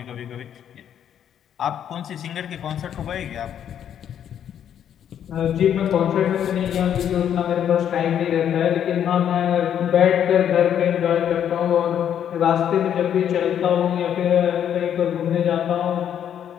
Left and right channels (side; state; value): right; quieter; 9.5 dB